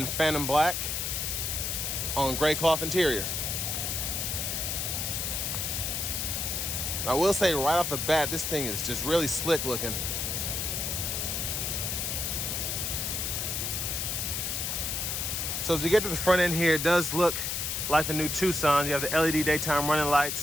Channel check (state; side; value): noise; left; hiss, 1 dB below the sound